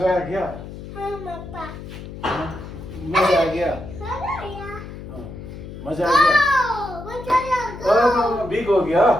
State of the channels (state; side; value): noise; left; hum, 12 dB below the sound